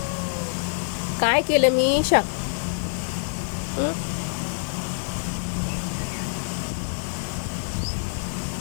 काय केलं मी शा? हं?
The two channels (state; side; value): silent; right; digital silence